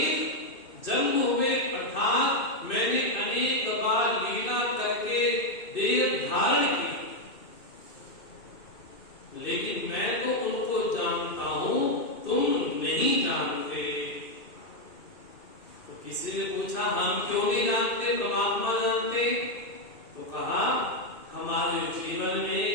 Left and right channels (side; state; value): right; late; 2.6 ms